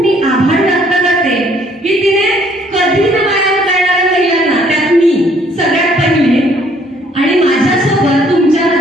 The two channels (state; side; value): normal; both; correlation 0.63